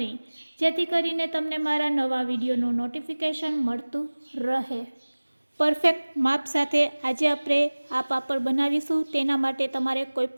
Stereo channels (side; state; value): both; inverted; correlation -1.00